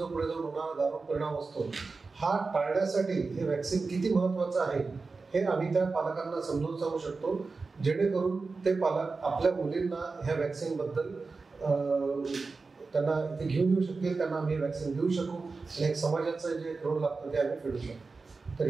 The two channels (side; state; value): left; quieter; 4.1 dB